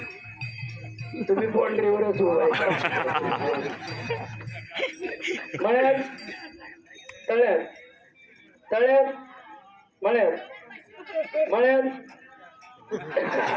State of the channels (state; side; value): identical; both; correlation 1.00